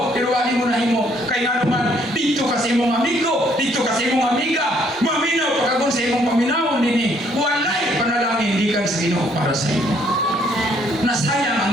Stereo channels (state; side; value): normal; both; correlation 0.66